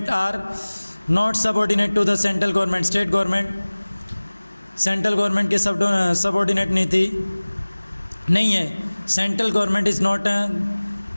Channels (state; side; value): inverted; both; correlation -1.00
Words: are not subordinate to the central government, state government central government के सबऑर्डिनेट नहीं है. Central government is not,